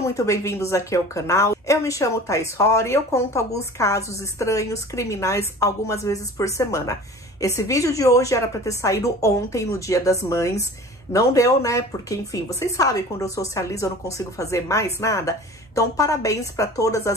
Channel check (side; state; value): both; normal; correlation 0.41